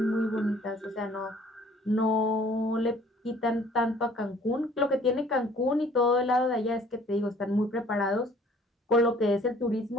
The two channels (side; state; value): both; normal; correlation 0.55